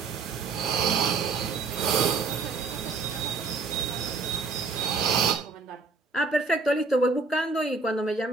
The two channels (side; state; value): left; quieter; 4.3 dB